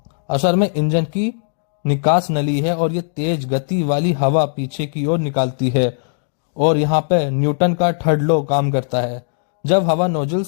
असल में इंजन की निकास नली है, और ये तेज गति वाली हवा पीछे की ओर निकालती है, और यहाँ पे न्यूटन का थर्ड लॉ काम करता है। जब हवा नोजल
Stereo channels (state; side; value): silent; right; digital silence